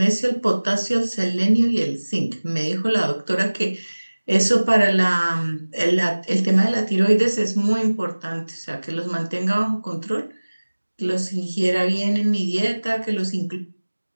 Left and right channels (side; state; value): both; inverted; correlation -1.00